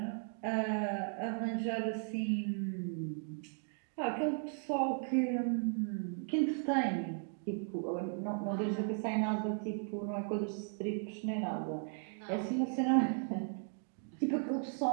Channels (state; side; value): silent; left; 54 dB below the other